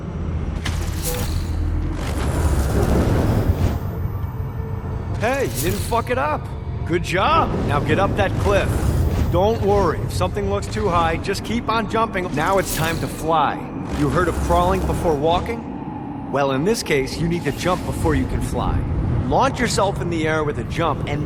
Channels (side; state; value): both; identical; correlation 1.00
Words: Hey, you didn't fuck it up. Good job. Now get up that cliff. Don't worry, if something looks too high, just keep on jumping. Now it's time to fly. You heard of crawling before walking? Well, in this case, you need to jump before you can fly. Launch yourself in the air with a jump,